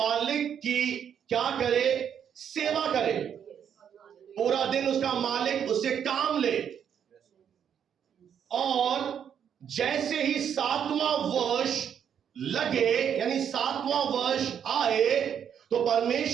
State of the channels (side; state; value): left; quieter; 8.4 dB